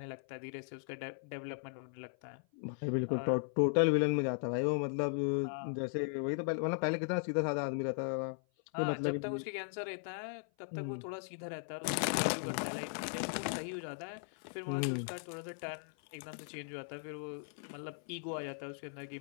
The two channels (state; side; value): silent; right; 53 dB below the other